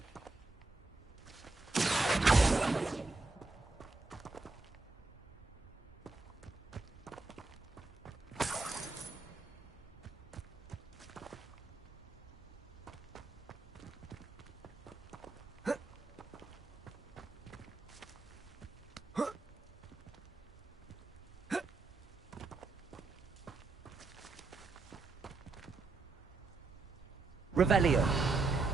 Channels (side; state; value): left; quieter; 3.6 dB